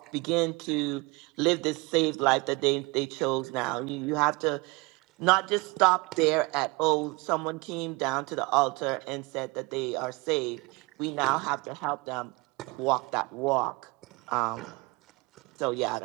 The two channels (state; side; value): quieter; left; 26.0 dB